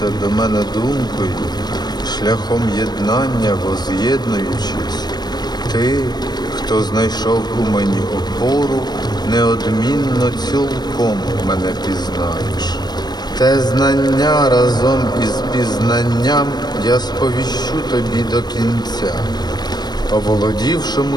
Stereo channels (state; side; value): late; right; 0.20 ms